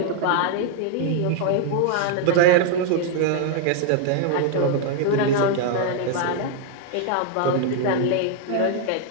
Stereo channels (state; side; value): different; both; correlation 0.00